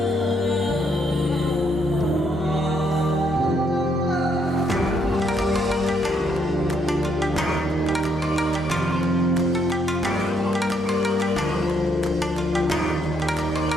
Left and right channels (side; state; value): both; normal; correlation 0.73